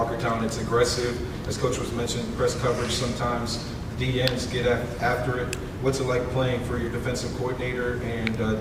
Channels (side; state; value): both; identical; correlation 1.00